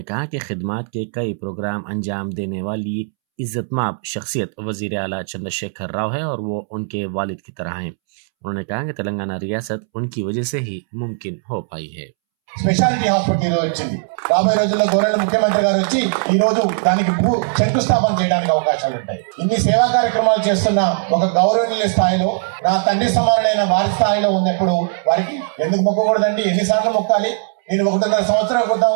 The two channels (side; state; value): left; silent; 67 dB below the other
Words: कहा कि खिदमत के कई प्रोग्राम अंजाम देने वाली इज्जतमाब शख्सियत वजीर आला चंद्रशेखर राव है और वो उनके वालिद की तरह हैं। उन्होंने कहा कि तेलंगाना रियासत उनकी वजह से ही मुमकिन हो पाई है। స్పెషాలిటీ హాస్పిటల్ ఈరోజు వచ్చింది. రాబోయే రోజుల్లో గౌరవ ముఖ్యమంత్రి గారు వచ్చి ఈ రోజు దానికి శంకుస్థాపన చేయడానికి అవకాశాలు ఉంటాయి. ఇన్ని సేవా కార్యక్రమాలు చేస్తున్న ఒక గౌరవనీయ స్థాయిలో నా తండ్రి సమానులైన వారి స్థాయిలో ఉన్నప్పుడు వారికి ఎందుకు మొక్కకూడదండి? ఎన్నిసార్లు మొక్కాలి? నేను 1.5 సంవత్సరాల క్రితం